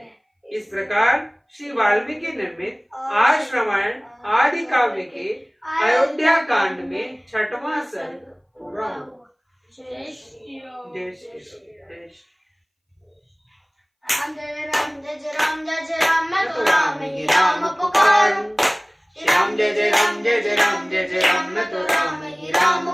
इस प्रकार श्री वाल्मीकि निर्मित आर्ष रामायण आदि काव्य के अयोध्या कांड में छठवां सर्ग पूरा हुआ। जय श्री राम। राम जय राम जय जय राम जय जय राम, मैं तो राम ही राम पुकारूं। श्री राम जय जय राम जय जय राम जय जय राम, मैं तो राम ही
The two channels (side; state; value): both; identical; correlation 1.00